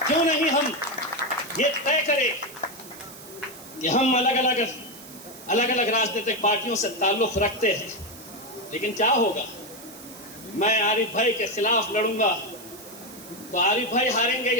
क्यों नहीं हम ये तय करें कि हम अलग अलग राजनीतिक पार्टियों से ताल्लुक रखते हैं, लेकिन क्या होगा? मैं आरिफ भाई के खिलाफ लड़ूंगा तो आरिफ भाई हारेंगे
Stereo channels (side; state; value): right; noise; hiss, 17 dB below the sound